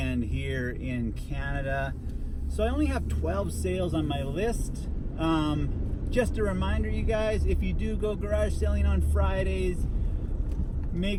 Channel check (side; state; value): both; identical; correlation 1.00